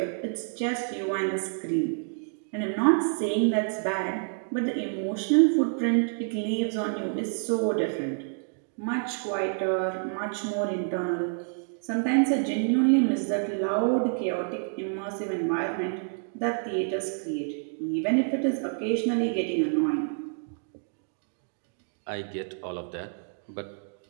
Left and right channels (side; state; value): left; silent; 59 dB below the other